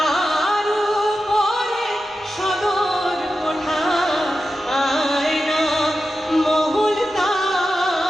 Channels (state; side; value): normal; both; correlation 0.92